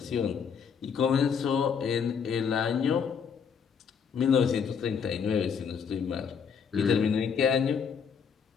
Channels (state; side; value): quieter; right; 6.7 dB